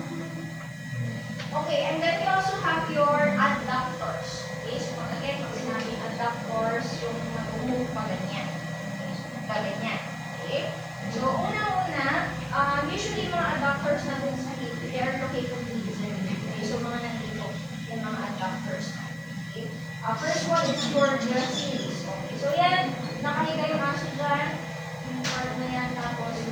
Okay, and then we also have your adductors. Okay, so again, pag sinabing adductors, yung mag-move pa ganyan. Okay, so ganyan. Okay? So, una-una, usually mga adductors natin sa hip, they are located dito. Okay, so mga nandito, yung mga adductors natin. Okay? First one is your gracilis. Okay, so yan, nakahiga yung aso dyan, yung part na yan, tapos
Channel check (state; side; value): noise; right; hiss, 27 dB below the sound